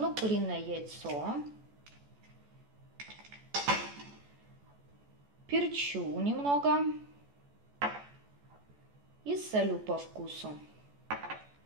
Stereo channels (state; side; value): late; left; 14 ms